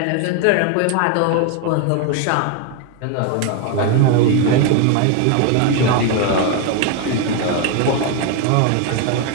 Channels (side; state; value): both; different; correlation 0.01